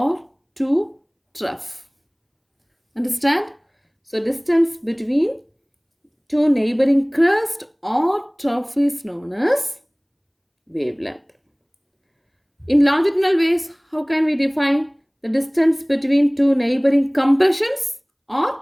two trough. Understand? So distance between two neighboring crest or trough is known as wavelength. In longitudinal waves, how can we define the distance between two neighboring compressions or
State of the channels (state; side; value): identical; both; correlation 1.00